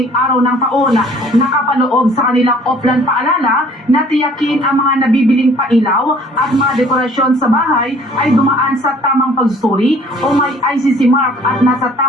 araw ng taon. Nakapaloob sa kanilang offline paalala na tiyakin ang mga nabibiling pailaw at mga dekorasyon sa bahay ay dumaan sa tamang pagsusuri o may ICC mark at nasa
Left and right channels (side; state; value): both; normal; correlation 0.55